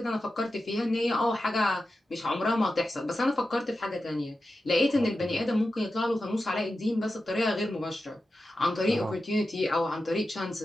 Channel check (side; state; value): both; normal; correlation 0.91